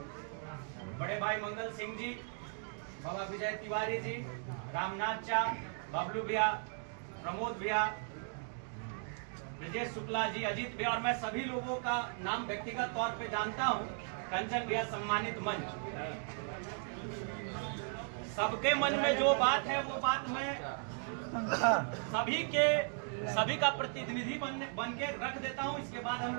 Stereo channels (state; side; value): silent; left; 53 dB below the other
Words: बड़े भाई मंगल सिंह जी, बाबा विजय तिवारी जी, रामनाथ चा, बबलू भैया, प्रमोद भैया, ब्रजेश शुक्ला जी, अजीत भैया और मैं सभी लोगों का नाम व्यक्तिगत तौर पे जानता हूं। कंचन भैया सम्मानित मंच, सबके मन में जो बात है वो बात मैं सभी का प्रतिनिधि बन के रख देता हूं। इसके बाद हम